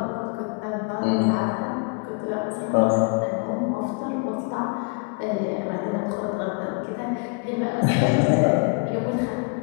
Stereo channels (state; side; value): quieter; right; 35.0 dB